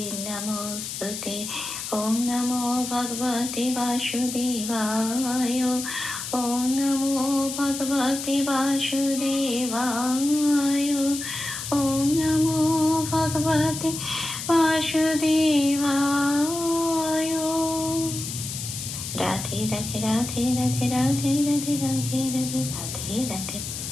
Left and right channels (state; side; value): noise; left; hiss, 7 dB below the sound